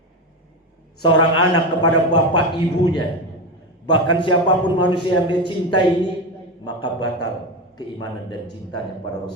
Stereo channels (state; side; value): normal; both; correlation 0.17